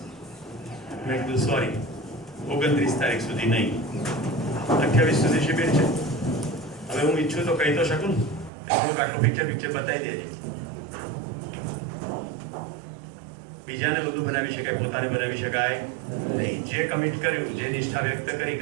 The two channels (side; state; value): left; drops out; at 8.5 s